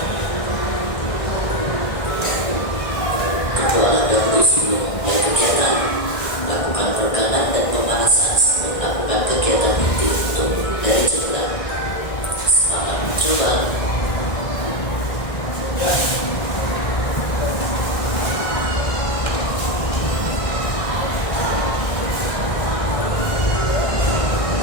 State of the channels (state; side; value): late; right; 1.6 ms